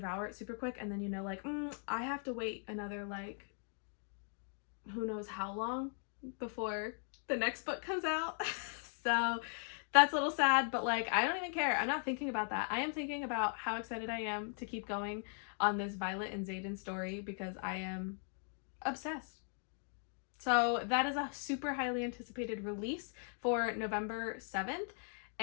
it super quick, and then you know like, I have to wait another like who knows how long before the next book comes out. So that's a little sad, but like I don't even care. I'm not thinking about that. I am thinking about how excited I am to keep going on this Violet and Xaden story because I am obsessed. So that is a super highly anticipated release for November 7th,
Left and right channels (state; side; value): silent; right; 52 dB below the other